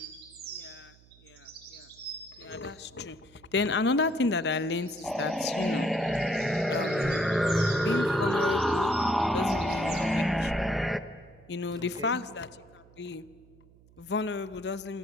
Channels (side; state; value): right; noise; hum, 27 dB below the sound